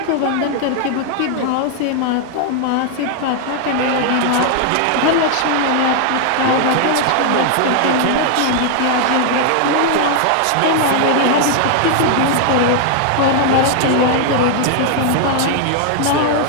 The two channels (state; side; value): different; both; correlation 0.00